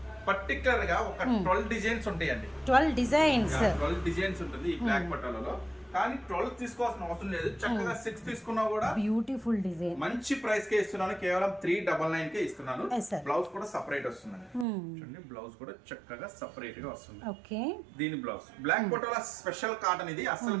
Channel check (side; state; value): left; drops out; at 14.7 s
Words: పర్టికులర్ గా ఒక 12 డిజైన్స్ ఉంటాయండి. 12 డిజైన్స్ ఉంటుంది ఈ బ్లాక్ పటోలాలో. కానీ 12 తీసుకోవాల్సిన అవసరం లేదు, చక్కగా 6 తీసుకున్నా కూడా బ్యూటిఫుల్ డిజైన్. మంచి ప్రైస్ కే ఇస్తున్నాను, కేవలం 399 కే ఇస్తున్నాను. బ్లౌజ్ కూడా సెపరేట్ వస్తుంది. చూడండి బ్లౌజ్ కూడా చక్కగా సెపరేట్ గా వస్తుంది. ఓకే. దీని blouse black patola special cotton, ఇది అస్సలు